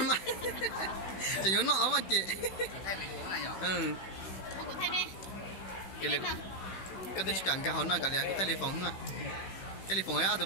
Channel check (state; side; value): late; right; 16 ms